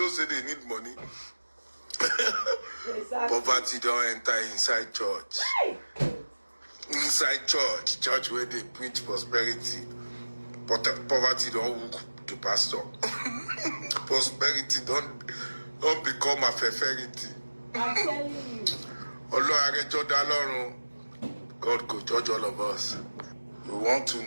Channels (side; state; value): both; inverted; correlation -1.00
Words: say they need money. Exactly. Poverty don't enter inside church. Inside church where they preach prosperity. But poverty don't hook the pastor. Prosperity don't become a favorite. I'm telling you. God could judge all of us. You want to